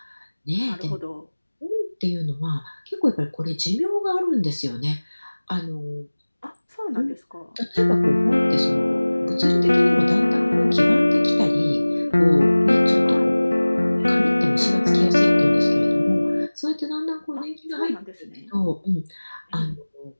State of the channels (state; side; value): inverted; both; correlation -1.00